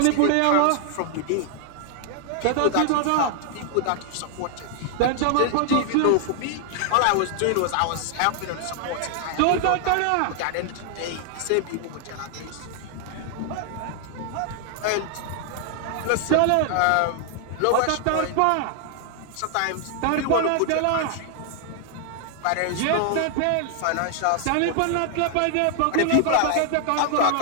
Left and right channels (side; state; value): both; different; correlation 0.00